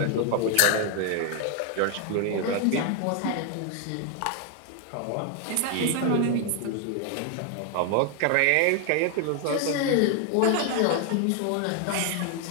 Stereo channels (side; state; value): both; different; correlation 0.01